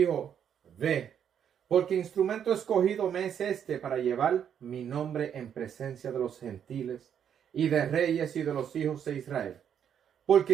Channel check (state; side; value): quieter; left; 8.6 dB